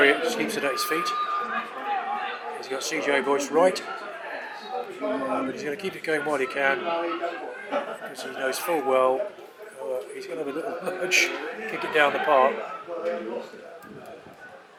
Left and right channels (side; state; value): both; identical; correlation 1.00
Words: just keeps it at his feet. He's got CJ Boyce right, but he's going to keep it going while he can, because he knows full well he's going to have a little nudge, kick it down the park. I